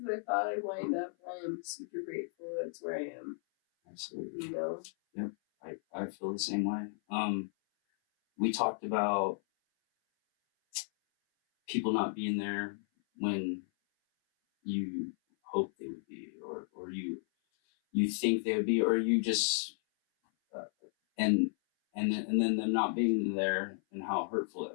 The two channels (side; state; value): right; silent; 55 dB below the other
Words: I thought I'd wind up, I am super grateful that it's where I am. Absolutely. Yep. I feel the same way. We talked about people not being there when you hope they would be, or you think they would be, or you just and then them not being there, and how hurtful